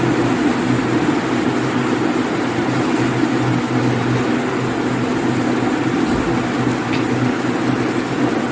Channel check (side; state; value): both; identical; correlation 1.00